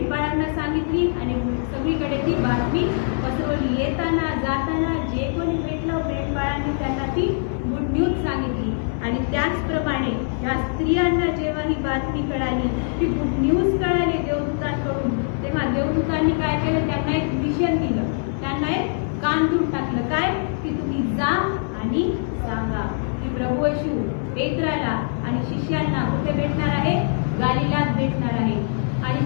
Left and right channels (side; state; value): right; silent; 63 dB below the other